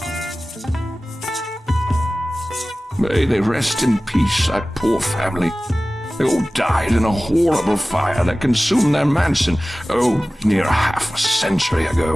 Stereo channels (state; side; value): normal; both; correlation 0.97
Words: May they rest in peace, that poor family. They all died in a horrible fire that consumed their mansion, near half a century